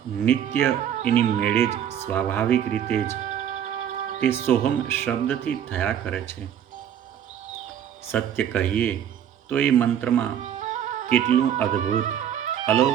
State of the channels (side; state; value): left; quieter; 9.6 dB